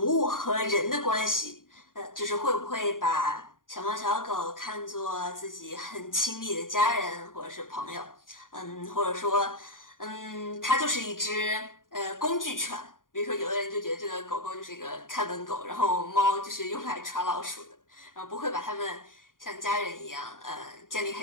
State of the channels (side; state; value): right; late; 0.90 ms